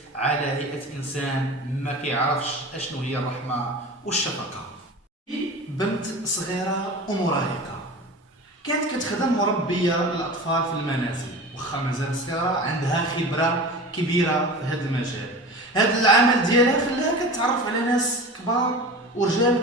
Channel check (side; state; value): both; normal; correlation 0.34